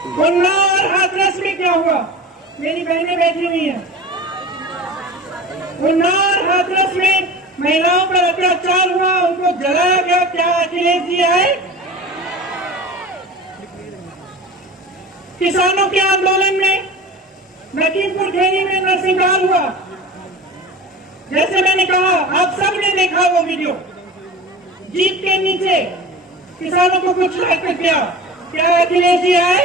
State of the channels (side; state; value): both; normal; correlation 0.34